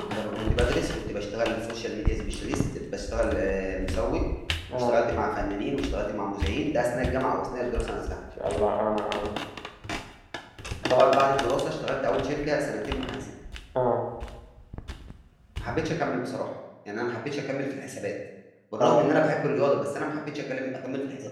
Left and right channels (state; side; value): identical; both; correlation 1.00